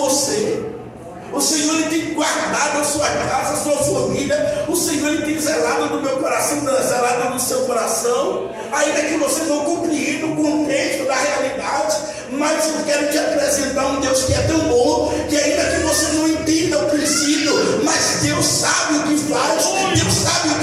O Senhor Ele tem guardado a sua casa, a sua família. O Senhor Ele tem zelado do meu coração, zelado do seu coração. Ainda que você não compreenda o contexto da realidade, mas eu quero te apresentar um Deus que é tão bom, que ainda que você não entenda o princípio, mas Deus sabe o que faz, Deus sabe o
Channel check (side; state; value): both; identical; correlation 1.00